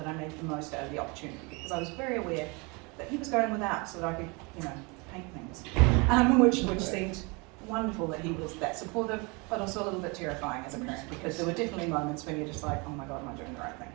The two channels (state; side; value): quieter; left; 29.0 dB